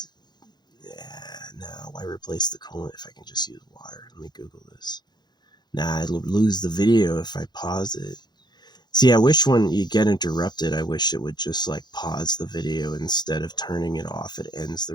Yeah, no. Why replace the coolant if I can just use water? Let me Google this. Nah, I'd lose the video if I pause it. See, I wish when you get interrupted, I wish it would just like pause the video instead of turning it off. It ends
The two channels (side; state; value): right; late; 0.21 ms